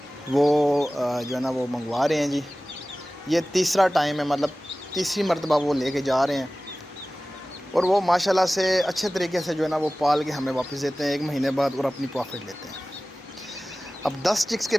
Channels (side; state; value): both; normal; correlation 0.97